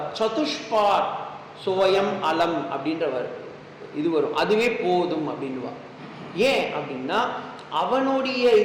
சதுஷ்பாத் சோயம் அலம் அப்படின்ற இது வரும், அதுவே போதும் அப்படின்வா. ஏன் அப்படின்னா அவனுடைய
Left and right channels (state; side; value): identical; both; correlation 1.00